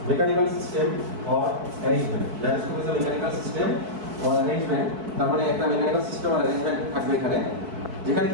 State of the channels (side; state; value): left; late; 4.6 ms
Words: mechanical system or arrangement. Gyroscope is a mechanical system or arrangement, তার মানে একটা মেকানিক্যাল সিস্টেম অর অ্যারেঞ্জমেন্ট থাকবে এখানে, যেখানে